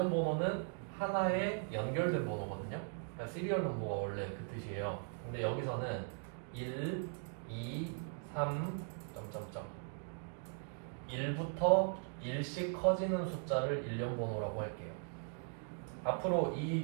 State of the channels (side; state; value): left; silent; 52 dB below the other